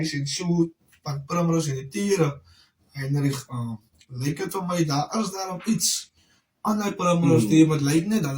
en so van Primrose en die Tiere en lyk dit vir my daar is daarom iets aan die Primrose team wat lyk net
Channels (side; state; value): both; identical; correlation 1.00